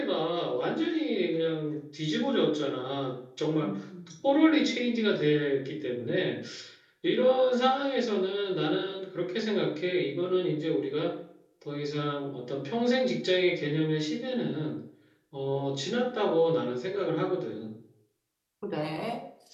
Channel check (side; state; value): both; identical; correlation 1.00